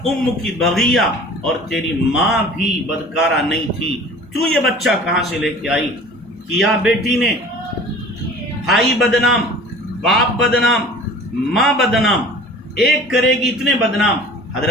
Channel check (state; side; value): normal; both; correlation 0.44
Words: ام کی بغیہ، اور تیری ماں بھی بدکارہ نہیں تھی، تو یہ بچہ کہاں سے لے کے آئی؟ کیا بیٹی نے، بھائی بدنام، باپ بدنام، ماں بدنام، ایک کرے گی اتنے بدنام۔